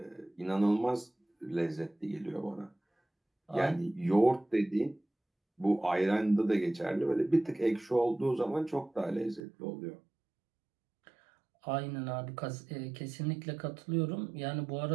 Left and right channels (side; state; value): left; drops out; at 9.4 s